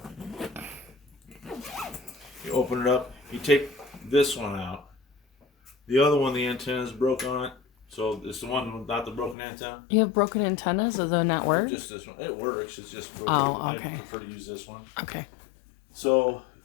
You open it up. You take this one out. The other one, the antenna is broke on it. So it's the one without the broken antenna. You have broken antennas, so they'll not work. Just this one. It works. It's just broken. Oh, okay. I prefer to use this one. Okay. So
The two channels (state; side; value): drops out; right; at 9.3 s